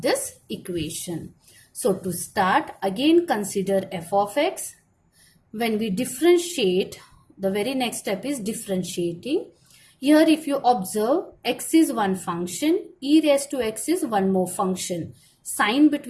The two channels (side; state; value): both; identical; correlation 1.00